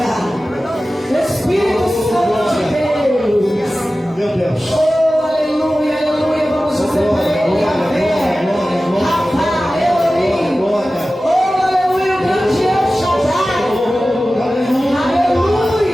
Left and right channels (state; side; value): normal; both; correlation 0.95